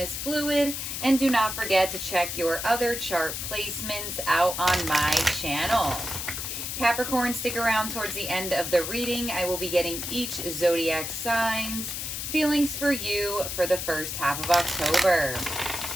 is fluid, and do not forget to check your other chart placements out on my channel. Capricorn, stick around towards the end of the reading. I will be getting each zodiac sign's feelings for you for the first half of October.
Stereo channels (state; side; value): noise; left; hiss, 5 dB below the sound